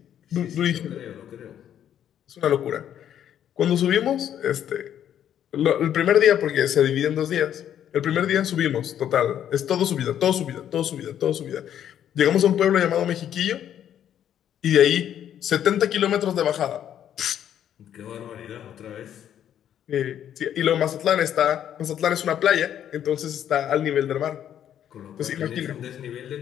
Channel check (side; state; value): right; quieter; 10.1 dB